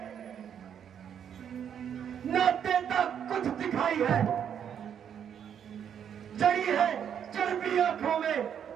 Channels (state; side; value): quieter; left; 8.6 dB